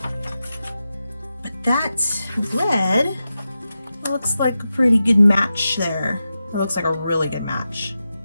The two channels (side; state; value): both; inverted; correlation -0.90